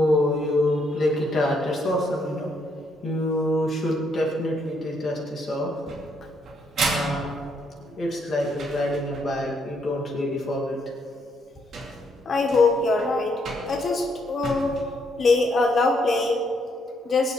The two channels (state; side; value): normal; both; correlation 0.73